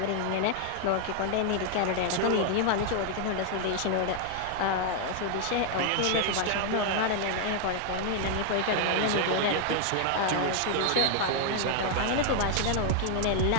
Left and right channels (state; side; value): different; both; correlation 0.00